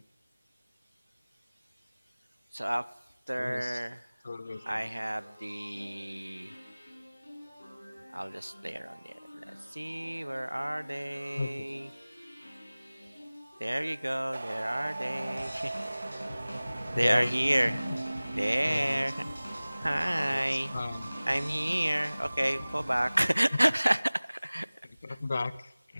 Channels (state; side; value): inverted; both; correlation -0.99